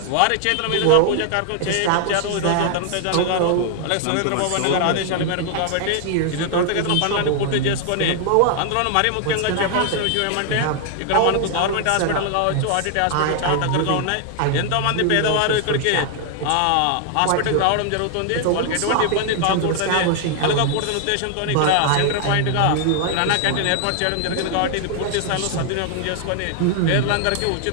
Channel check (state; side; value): different; both; correlation 0.00